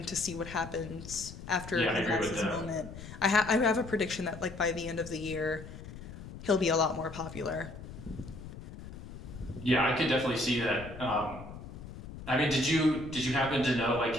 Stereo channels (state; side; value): noise; left; rumble, 13 dB below the sound